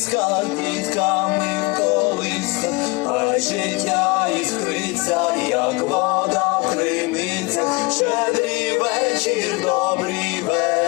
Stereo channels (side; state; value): right; quieter; 26.9 dB